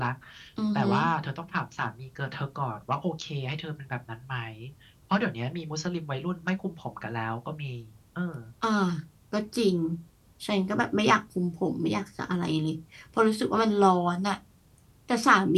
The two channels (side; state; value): both; identical; correlation 1.00